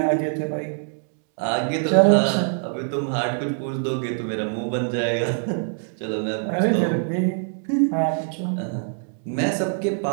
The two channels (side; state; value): left; silent; 63 dB below the other